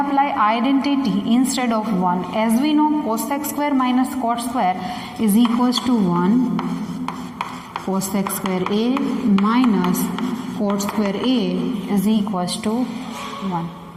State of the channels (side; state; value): both; identical; correlation 1.00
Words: identity instead of 1. As we know, cosec square minus cot square is equals to 1. Cosec square A minus cot square A is equals to 1.